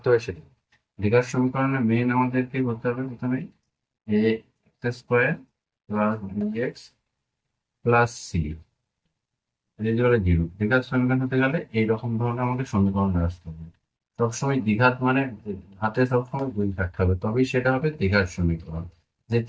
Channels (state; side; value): identical; both; correlation 1.00